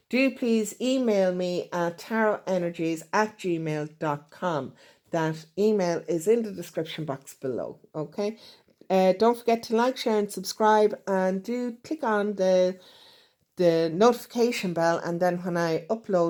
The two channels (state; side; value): identical; both; correlation 1.00